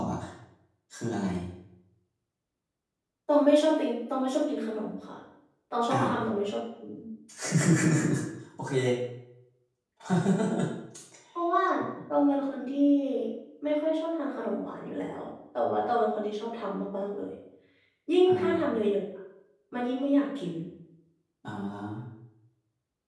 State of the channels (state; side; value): identical; both; correlation 1.00